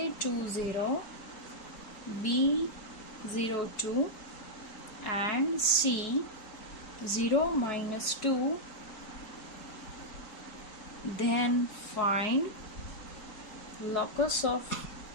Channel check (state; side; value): late; right; 4.7 ms